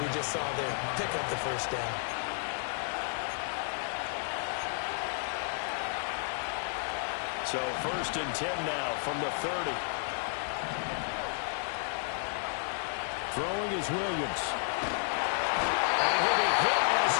just saw there. Pick up the first down. So 1st and 10 now from the 30. Throwing is Williams. And he'll be hit as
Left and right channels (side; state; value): right; silent; 56 dB below the other